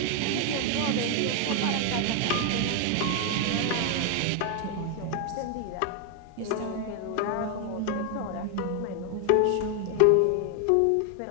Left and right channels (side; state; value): both; different; correlation 0.01